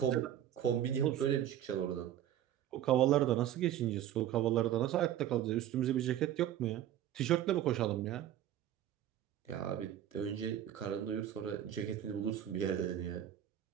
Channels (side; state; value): left; quieter; 11.5 dB